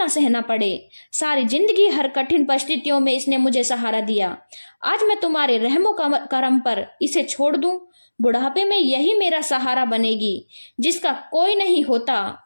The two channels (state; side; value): inverted; both; correlation -1.00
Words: सहना पड़े। सारी जिंदगी हर कठिन परिस्थितियों में इसने मुझे सहारा दिया। आज मैं तुम्हारे रहमो करम पर इसे छोड़ दूं। बुढ़ापे में यही मेरा सहारा बनेगी। जिसका कोई नहीं होता